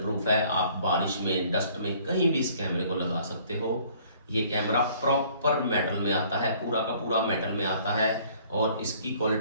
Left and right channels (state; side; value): inverted; both; correlation -0.57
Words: है। आप बारिश में, डस्ट में, कहीं भी इस कैमरे को लगा सकते हो। ये कैमरा प्रॉपर मेटल में आता है, पूरा का पूरा मेटल में आता है और इसकी